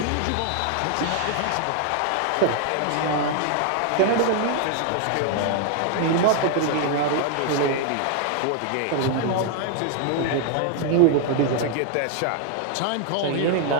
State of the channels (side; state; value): both; different; correlation 0.00